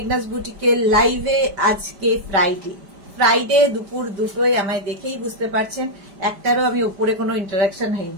বুটিকের লাইভে। আজকে ফ্রাইডে দুপুর 2টোয়, আমায় দেখেই বুঝতে পারছেন একটারও আমি উপরে কোনো ইন্টারাকশন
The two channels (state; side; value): late; left; 5.0 ms